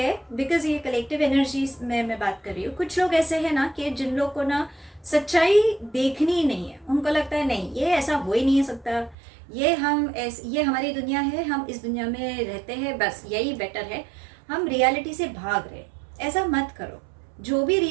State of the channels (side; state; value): left; drops out; at 9.2 s